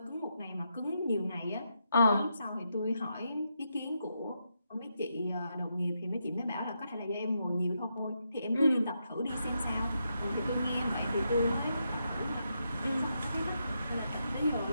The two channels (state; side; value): inverted; both; correlation -0.82